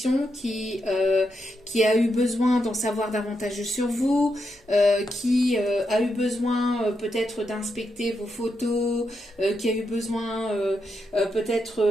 qui a eu besoin d'en savoir davantage sur vous, qui a eu besoin peut-être d'inspecter vos photos, qui a eu besoin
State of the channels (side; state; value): both; normal; correlation 0.83